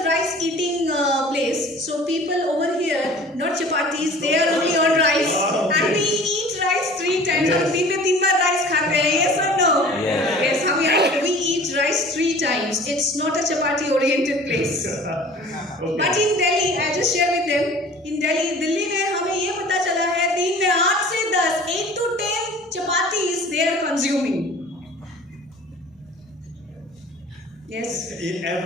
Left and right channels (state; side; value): normal; both; correlation 0.45